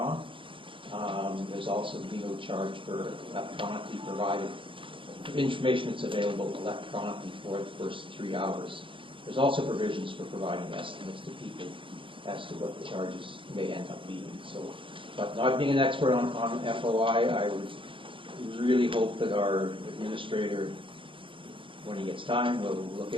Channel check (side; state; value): left; late; 0.25 ms